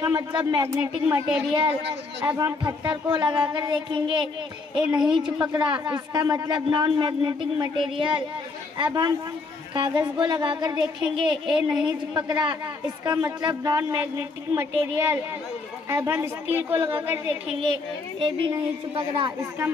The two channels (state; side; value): quieter; right; 3.8 dB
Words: मतलब मैग्नेटिक मटेरियल। अब हम पत्थर को लगाकर देखेंगे, ये नहीं चिपक रहा, इसका मतलब नॉन मैग्नेटिक मटेरियल। अब हम कागज को लगाकर देखेंगे, ये नहीं चिपक रहा, इसका मतलब नॉन मैग्नेटिक मटेरियल। अब हम स्टील को लगाकर देखेंगे, ये भी नहीं चिपक रहा, इसका